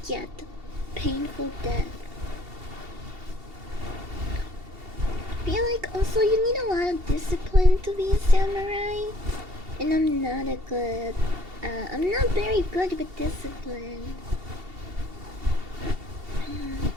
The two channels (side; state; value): left; late; 2.7 ms